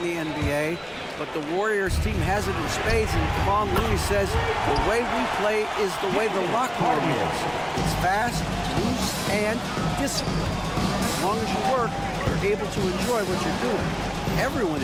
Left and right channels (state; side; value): identical; both; correlation 1.00